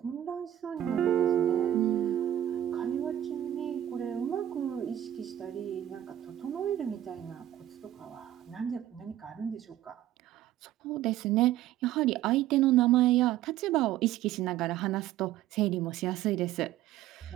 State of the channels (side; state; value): left; quieter; 12.5 dB